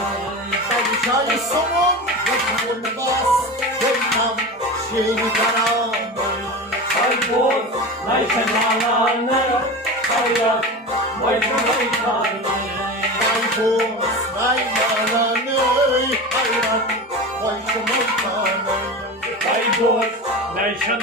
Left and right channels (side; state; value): both; normal; correlation 0.28